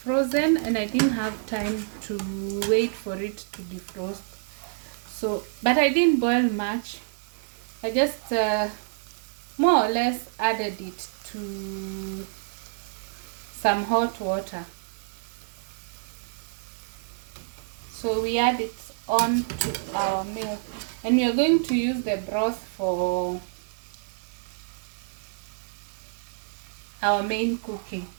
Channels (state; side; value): silent; left; digital silence